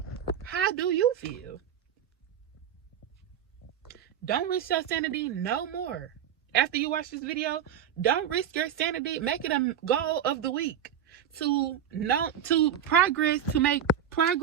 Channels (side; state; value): left; quieter; 9.0 dB